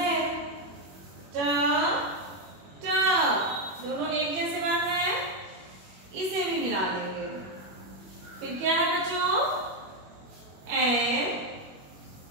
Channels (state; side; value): late; left; 21 ms